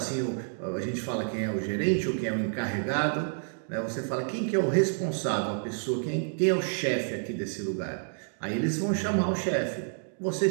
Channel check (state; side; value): silent; left; digital silence